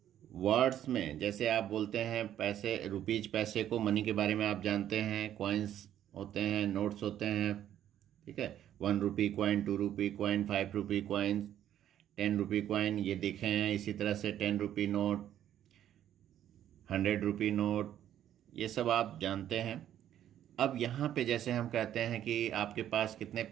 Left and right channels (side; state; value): left; quieter; 11.1 dB